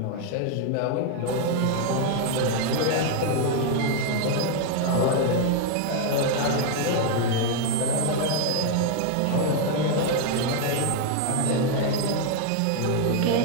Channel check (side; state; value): both; different; correlation 0.00